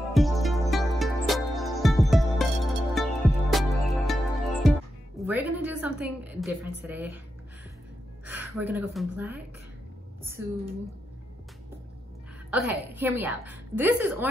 We're gonna do something different today. We're gonna go from black to, okay, hear me out. This is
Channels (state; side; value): normal; both; correlation 0.86